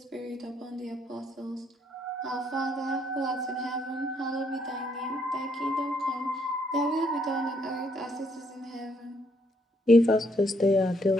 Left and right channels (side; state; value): both; normal; correlation 0.71